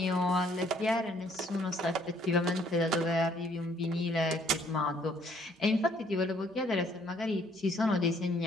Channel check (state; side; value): normal; both; correlation 0.64